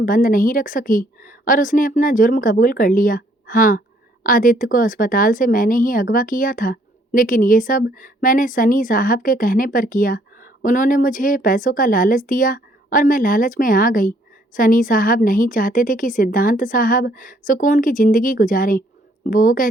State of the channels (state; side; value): normal; both; correlation 0.65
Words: बंद नहीं रख सकी और उसने अपना जुर्म कबूल कर लिया। हाँ, आदित्य को अस्पताल से मैंने ही अगवा किया था, लेकिन ये सब मैंने सनी साहब के कहने पर किया। उन्होंने मुझे पैसों का लालच दिया और मैं लालच में आ गई। सनी साहब नहीं चाहते थे कि सिद्धांत साहब सुकून की ज़िंदगी गुजारें। वो